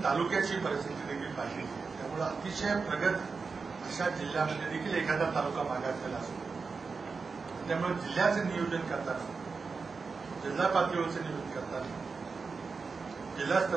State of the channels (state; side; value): quieter; left; 4.7 dB